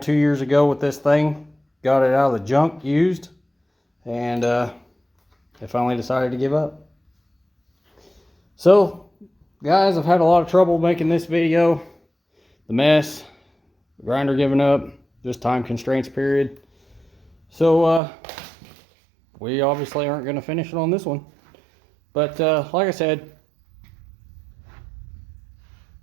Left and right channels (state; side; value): drops out; left; at 18.0 s